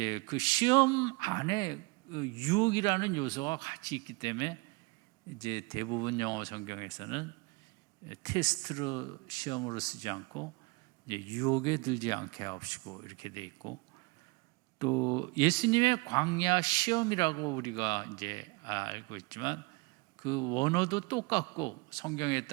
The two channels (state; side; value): quieter; left; 27.0 dB